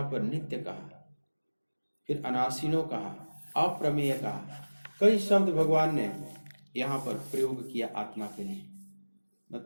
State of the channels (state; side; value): inverted; both; correlation -1.00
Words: पर नित्य कहा, फिर अनाशिनो कहा, अप्रमेय कहा। कई शब्द भगवान ने यहाँ पर प्रयोग किया आत्मा के लिए।